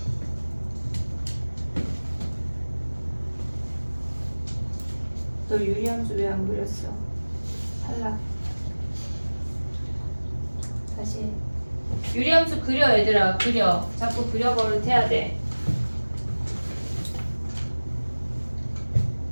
너 유리함수 왜 안 그렸어? 탈락. 다시. 유리함수 그려 얘들아. 그려. 자꾸 그려버릇 해야 돼.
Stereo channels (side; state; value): both; inverted; correlation -1.00